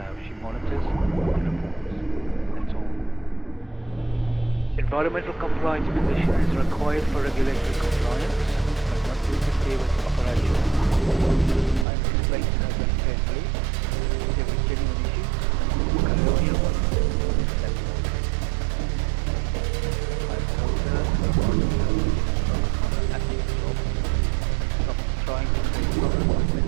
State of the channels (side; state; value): left; drops out; at 11.9 s